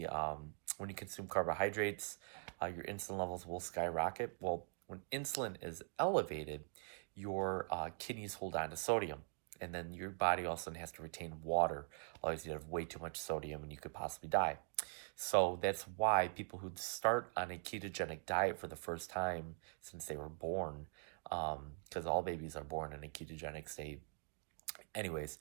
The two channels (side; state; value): left; silent; digital silence